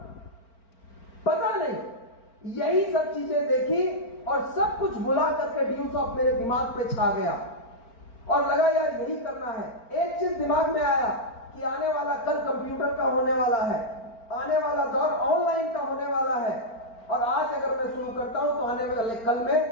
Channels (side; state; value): right; late; 4.4 ms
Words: पता नहीं, यही सब चीजें देखी और सब कुछ भुला करके व्यूसॉफ्ट मेरे दिमाग पे छा गया और लगा यार यही करना है। एक चीज दिमाग में आया कि आने वाला कल कंप्यूटर का होने वाला है, आने वाला दौर ऑनलाइन का होने वाला है, और आज अगर मैं शुरू करता हूं तो आने वाले कल